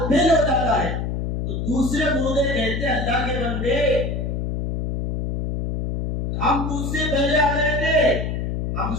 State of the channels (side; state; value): left; noise; hum, 2 dB below the sound